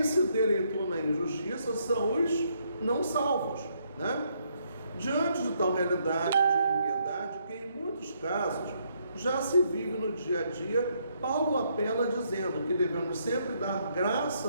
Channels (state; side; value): inverted; both; correlation -0.73